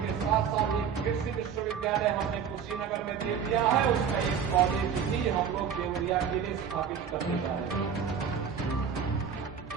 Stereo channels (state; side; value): quieter; left; 7.3 dB